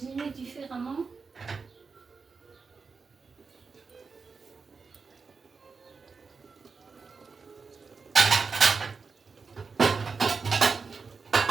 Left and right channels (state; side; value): quieter; left; 4.9 dB